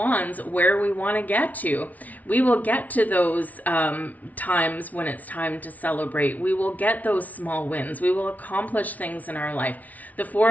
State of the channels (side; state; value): right; late; 0.073 ms